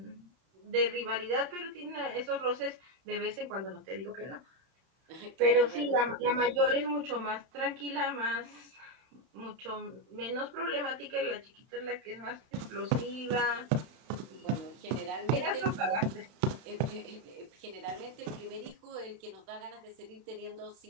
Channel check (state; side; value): late; left; 31 ms